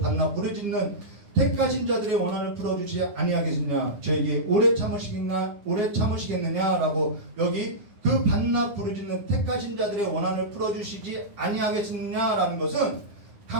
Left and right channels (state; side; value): late; left; 9.9 ms